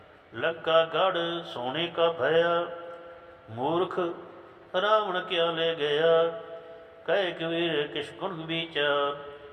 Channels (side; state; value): both; identical; correlation 1.00